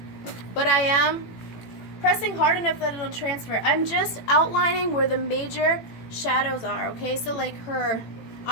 But I am pressing hard enough that it'll transfer. I'm just outlining where the major shadows are, okay? So like her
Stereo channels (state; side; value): late; right; 18 ms